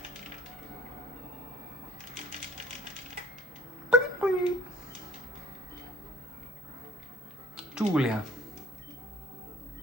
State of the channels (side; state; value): both; normal; correlation 0.53